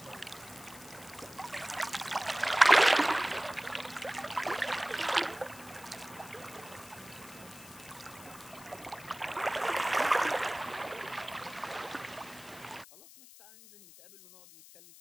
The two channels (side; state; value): left; noise; hiss, 19 dB below the sound